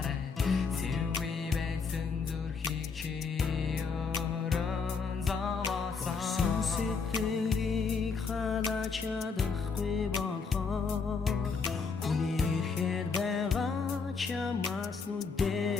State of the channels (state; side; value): quieter; right; 5.1 dB